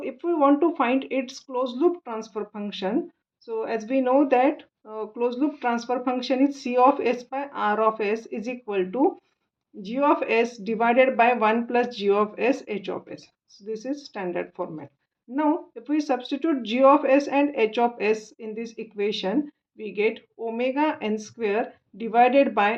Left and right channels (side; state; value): both; identical; correlation 1.00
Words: we want to find its closed loop transfer function, so as we know that closed loop transfer function is C of S by R of S is equal to G of S divided by 1 plus G of S H of S. So this is standard format. Now, if we substitute G of S and H of S in this equation, we get omega n square divided